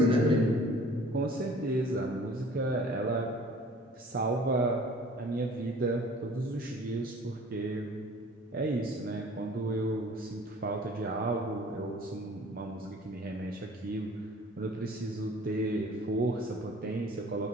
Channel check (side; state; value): both; normal; correlation 0.49